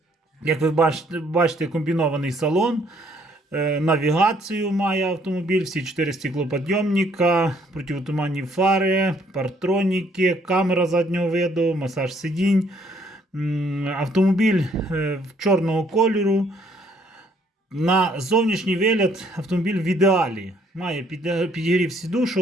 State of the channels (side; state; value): both; normal; correlation 0.65